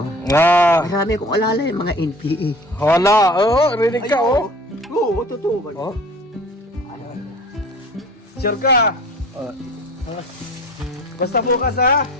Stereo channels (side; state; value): both; normal; correlation 0.44